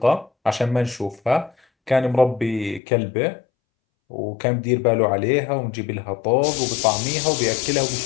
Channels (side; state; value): right; drops out; at 2.8 s